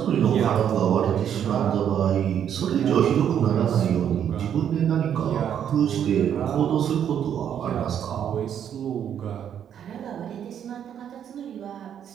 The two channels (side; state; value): left; quieter; 9.2 dB